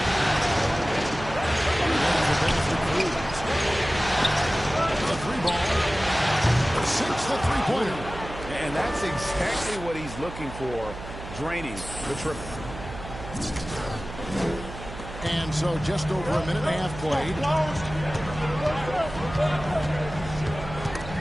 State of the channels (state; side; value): noise; right; hum, 11 dB below the sound